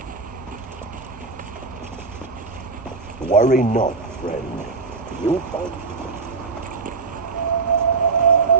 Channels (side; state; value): left; quieter; 4.4 dB